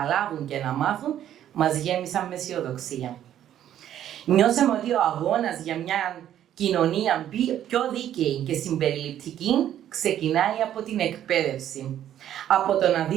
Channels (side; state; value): left; quieter; 11.1 dB